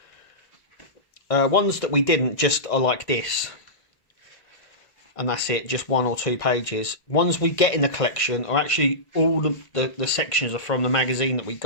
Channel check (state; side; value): late; right; 1.8 ms